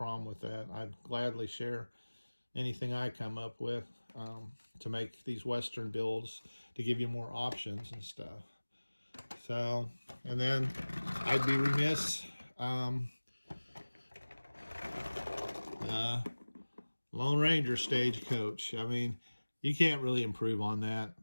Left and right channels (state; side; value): inverted; both; correlation -1.00